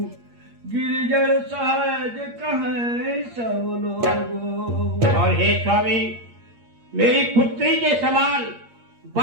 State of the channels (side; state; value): left; late; 8.6 ms